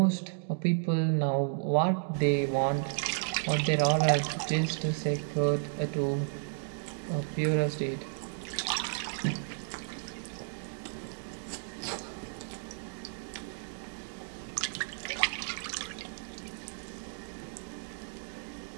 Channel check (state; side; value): silent; left; digital silence